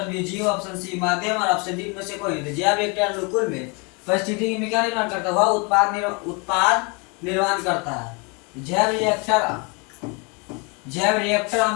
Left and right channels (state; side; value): quieter; right; 31.2 dB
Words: बी जीव, ऑप्शन सी माध्यम और ऑप्शन डी में से कोई नहीं। जैव रिएक्टर अनुकूल में परिस्थितिकी में क्या निर्माण करता है? वह उत्पाद निर्माण करता है। जैव रिएक्टर